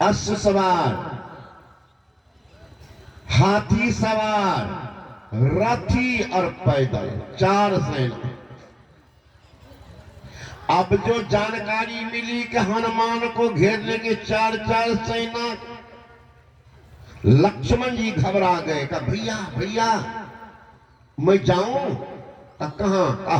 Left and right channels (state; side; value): identical; both; correlation 1.00